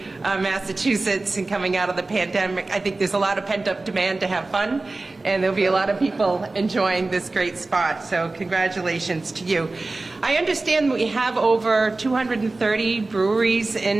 Massachusetts and coming out of the pandemic. I think there's a lot of pent-up demand to have fun, and there'll be a lot of people enjoying this great spot. So congratulations to you. I understand we have over 230 breweries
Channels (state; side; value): quieter; left; 3.3 dB